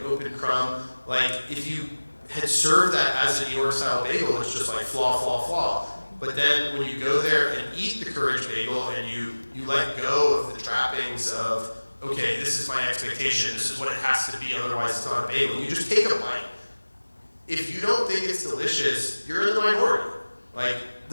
open crumb. If you had served that as a New York style bagel, it's just flaw, flaw, flaw. But then when you go there and eat the Courage Bagel and you let go of the trappings of, okay, this is my expectation, this is what it has to be, otherwise it's not a bagel. You just take a bite. If you don't think it's delicious, you're in the minority.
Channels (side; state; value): both; inverted; correlation -1.00